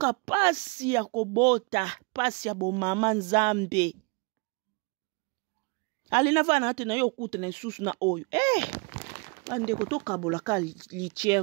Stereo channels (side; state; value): left; quieter; 31.0 dB